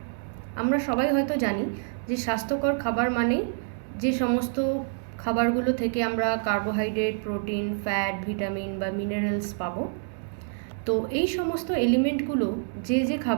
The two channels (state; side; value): silent; left; digital silence